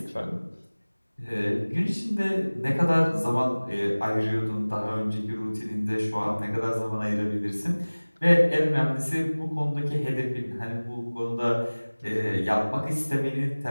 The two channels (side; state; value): both; inverted; correlation -1.00